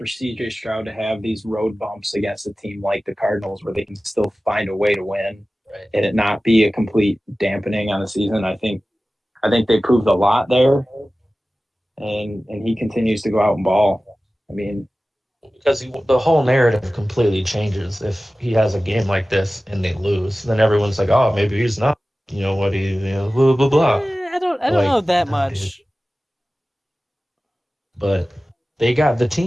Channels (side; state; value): both; normal; correlation 0.96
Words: CJ Stroud to have these road bumps against a team like the Cardinals where they can still find a way to win Right. and it not be a complete dampening on the season. I think they proved a lot there, and he continues to go out and ball. I mean, Because the whole narrative completely changes if he has a game like this and they lose. Then everyone's like, "Oh, maybe he's not. You know what he, blah blah blah." I don't Like, know that nah, dude. much. But they got the